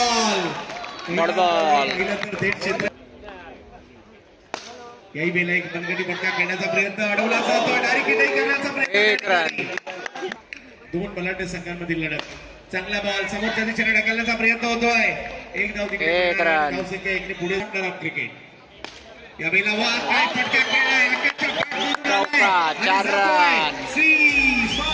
याही बेला एक बनगटी फटका खेळण्याचा प्रयत्न अडवला जातो. डायरेक्ट हिट करण्याचा प्रयत्न. दोन बलाढ्य संघांमधील लढत. चांगला बॉल समोरच्या दिशेने ढकलण्याचा प्रयत्न होतोय. एक धाव तिकडे धावसंख्या एकने पुढे क्रिकेट. या बेला वा काय फटका खेळलाय. 4 रन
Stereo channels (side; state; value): both; identical; correlation 1.00